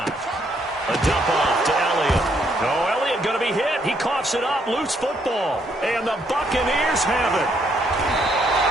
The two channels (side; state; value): both; normal; correlation 0.72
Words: A dump off to Elliott. Oh, Elliott going to be hit. He coughs it up, loose football. And the Buccaneers have it.